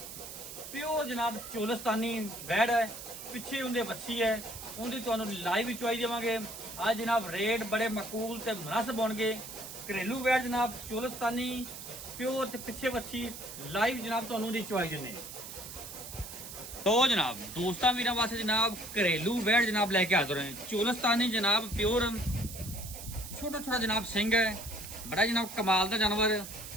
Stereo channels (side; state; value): right; noise; hiss, 11 dB below the sound